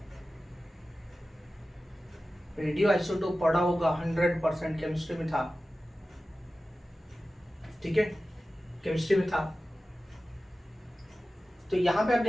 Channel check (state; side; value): normal; both; correlation 0.95